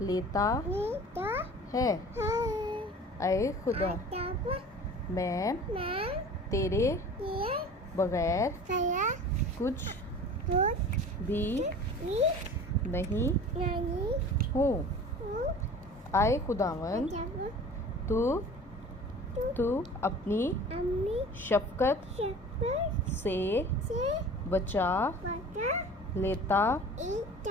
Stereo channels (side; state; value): both; normal; correlation 0.41